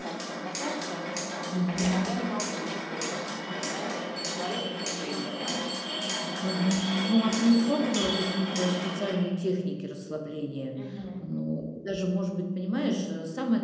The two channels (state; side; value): identical; both; correlation 1.00